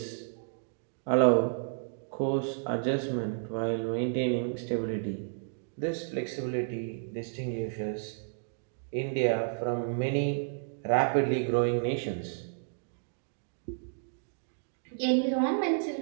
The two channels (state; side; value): silent; left; digital silence